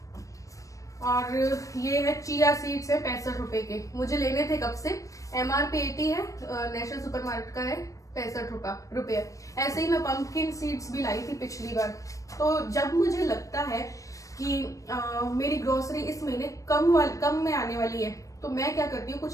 और ये है चिया सीड्स है 65 रुपए के, मुझे लेने थे कब से। MRP 80 है, नेशनल सुपर मार्केट का है 65 रुपए। ऐसे ही मैं पंपकिन सीड्स भी लाई थी पिछली बार। तो जब मुझे लगता है कि मेरी ग्रोसरी इस महीने कम में आने वाली है, तो मैं क्या करती हूँ, कुछ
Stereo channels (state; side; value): late; right; 0.16 ms